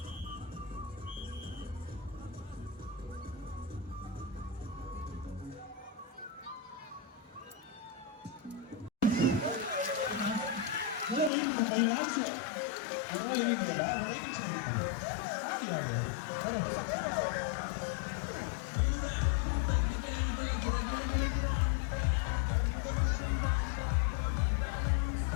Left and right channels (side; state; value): right; drops out; at 11.3 s